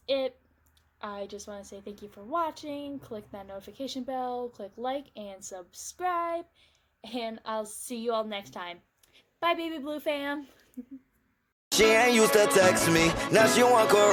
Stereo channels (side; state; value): both; identical; correlation 1.00